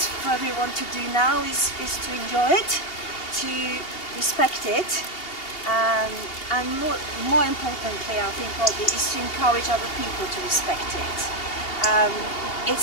for everyone to do now is to enjoy it, to respect it, and more importantly, I think probably, is to encourage other people to respect it.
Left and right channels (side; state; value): right; late; 2.8 ms